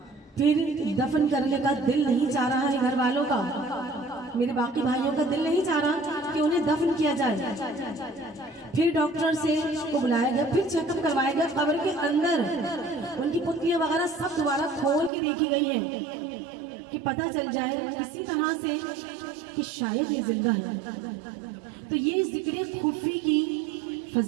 پھر دفن کرنے کا دل نہیں چاہ رہا ہے گھر والوں کا، میرے باقی بھائیوں کا دل نہیں چاہ رہا کہ انہیں دفن کیا جائے۔ پھر ڈاکٹر سے کو بلایا گیا، پھر چیک اپ کروایا گیا، قبر کے اندر ان کی پتلیاں وغیرہ سب دوبارہ کھول کے دیکھی گئی ہیں کہ پتہ چل جائے اسی طرح سے کہ شاید یہ زندہ ہے۔ تو یہ ذکر خفی کی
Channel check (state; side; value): drops out; left; at 15.1 s